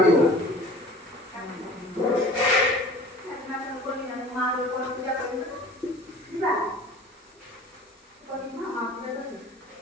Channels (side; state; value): both; normal; correlation 0.44